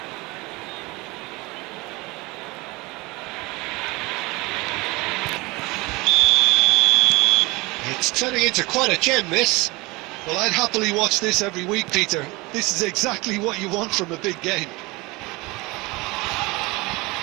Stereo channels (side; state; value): left; quieter; 23.8 dB